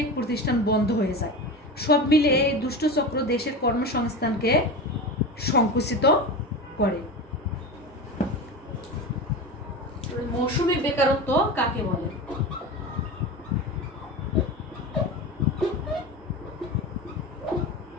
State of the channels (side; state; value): both; normal; correlation 0.26